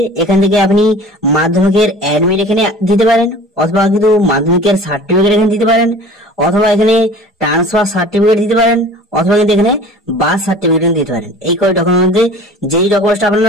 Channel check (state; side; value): normal; both; correlation 0.43